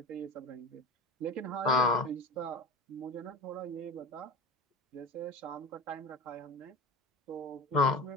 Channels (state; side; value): normal; both; correlation 0.34